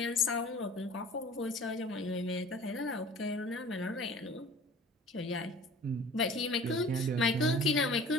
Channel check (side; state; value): both; normal; correlation 0.45